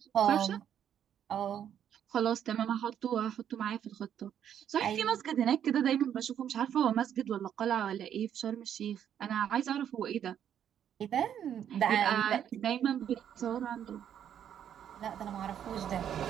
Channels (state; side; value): quieter; left; 9.4 dB